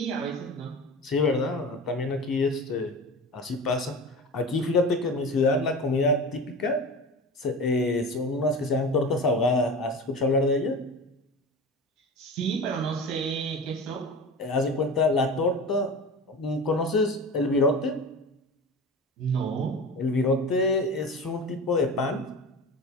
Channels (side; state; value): both; normal; correlation 0.31